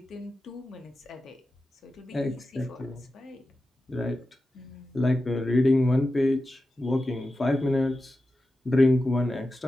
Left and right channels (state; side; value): normal; both; correlation 0.92